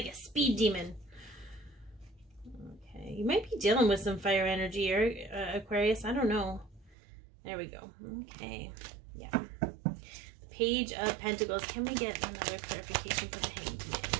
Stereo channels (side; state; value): left; drops out; at 7.0 s